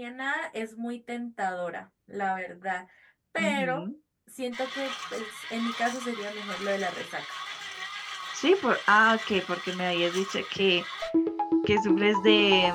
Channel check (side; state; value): both; identical; correlation 1.00